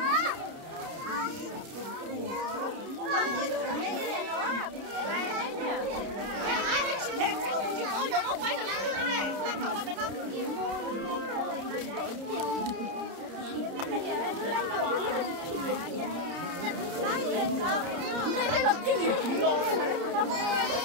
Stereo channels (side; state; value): left; late; 30 ms